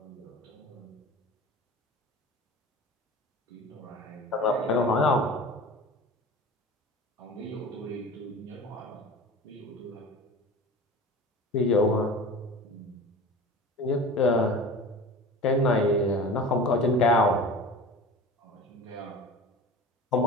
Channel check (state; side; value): normal; both; correlation 0.36